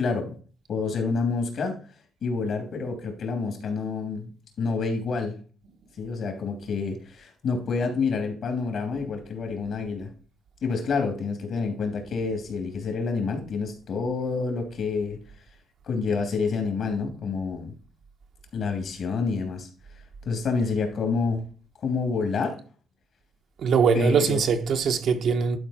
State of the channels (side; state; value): both; normal; correlation 0.69